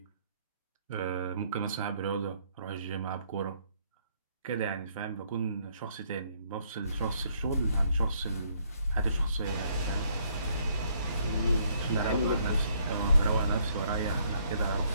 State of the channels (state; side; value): inverted; both; correlation -0.68